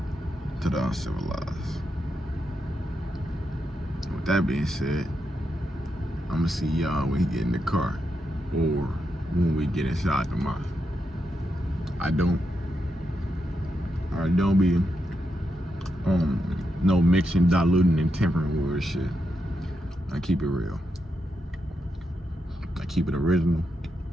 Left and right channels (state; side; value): normal; both; correlation 0.84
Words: to the uncivilized. With that being said, I'm gonna see y'all when he get in the car or when we get inside the mosque. I don't be no mixing, diluting, and tempering with shit. I keep it real. I keep it original.